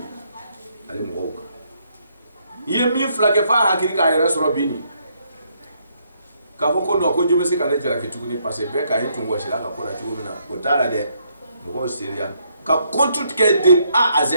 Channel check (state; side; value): inverted; both; correlation -0.73